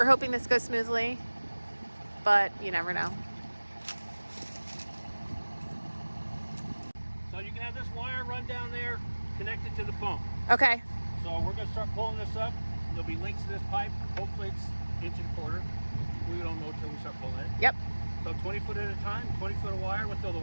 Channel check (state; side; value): inverted; both; correlation -1.00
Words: hoping this goes smoothly, but you never know. So you can have this wire run down there, connected to the pump. Okay. So we're going to start pulling this up. There'll be links to this pipe. Hopefully it's 1.25 inches. We don't know until we start pulling it. Yep. So 20 foot at a time, 20 foot of wire. We'll throw the